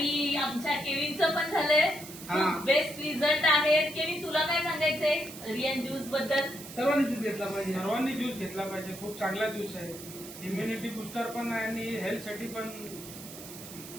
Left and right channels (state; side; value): noise; right; hiss, 14 dB below the sound